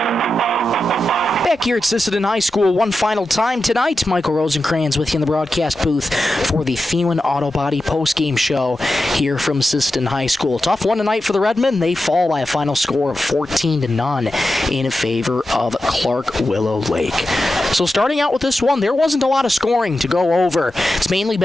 Back here at Sisseton High School one final time tonight. Michael Rosencrans with you in the broadcast booth for the Thielen Auto Body postgame show here from Sisseton High School. Tough one tonight for the Redmen. They fall by a final score of 14-0 in favor of Clark Willow Lake. So starting out with this one, there wasn't a lot of scoring to go over. It's mainly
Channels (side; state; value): both; normal; correlation 0.91